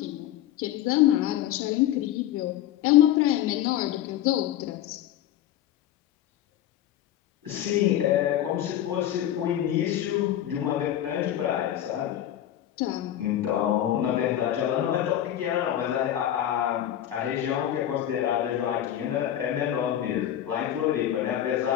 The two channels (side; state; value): right; quieter; 11.8 dB